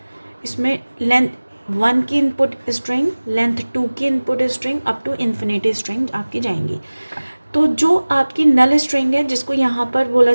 इसमें लेंथ 1 की इनपुट स्ट्रिंग, लेंथ 2 की input string, up to infinity string आपकी जाएंगी। तो जो आपकी नल स्ट्रिंग है, जिसको यहाँ पर बोला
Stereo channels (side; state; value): both; inverted; correlation -1.00